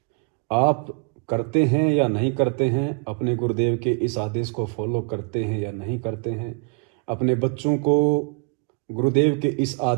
आप करते हैं या नहीं करते हैं, अपने गुरुदेव के इस आदेश को फॉलो करते हैं या नहीं करते हैं, अपने बच्चों को गुरुदेव के इस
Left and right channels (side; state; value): left; quieter; 33.3 dB